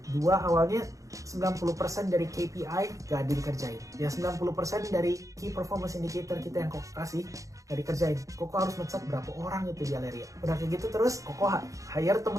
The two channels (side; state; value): left; late; 0.16 ms